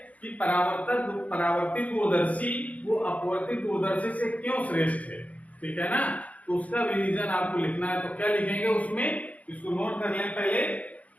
कि परावर्तित दूरदर्शी वो अपवर्तित दूरदर्शी से क्यों श्रेष्ठ है, ठीक है ना। तो उसका भी रीजन आपको लिखना है। तो क्या लिखेंगे उसमें, इसको नोट कर लें, पहले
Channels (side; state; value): right; late; 0.069 ms